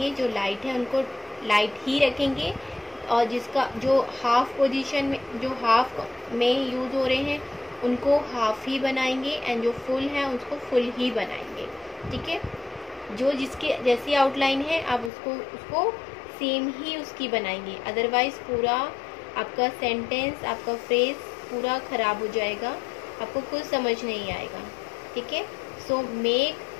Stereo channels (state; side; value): drops out; right; at 15.1 s